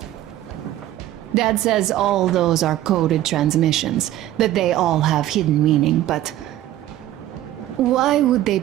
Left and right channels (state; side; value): quieter; left; 13.6 dB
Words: Dad says all those are coded transmissions, that they all have hidden meaning, but... why would they